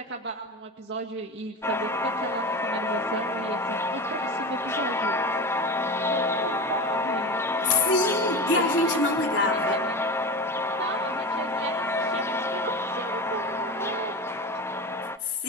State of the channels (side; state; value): both; normal; correlation 0.27